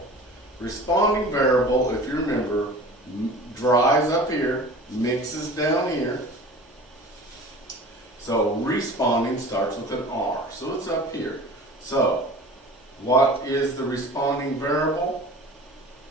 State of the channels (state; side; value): normal; both; correlation 0.41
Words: Responding variable, if you remember, dries up here, mixes down here. So, responding starts with an R, so it's up here. So, what is the responding variable?